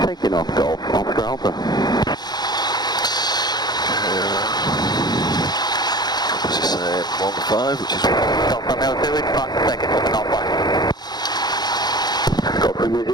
8. Taking off Golf, Oscar Alpha. What's he saying? 1-5, which is... Golf Romeo 2, it's 5 seconds of an alpha. Golf Romeo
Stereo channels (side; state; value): right; late; 0.20 ms